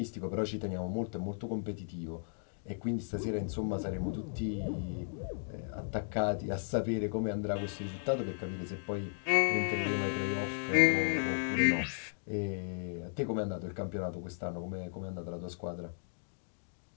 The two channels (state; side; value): silent; right; digital silence